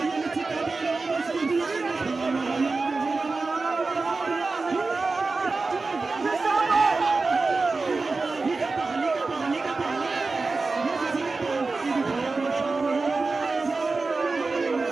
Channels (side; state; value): left; quieter; 3.8 dB